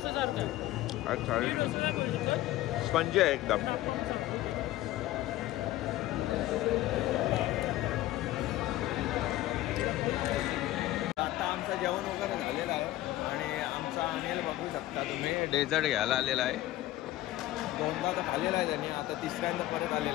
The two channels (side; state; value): right; quieter; 15.7 dB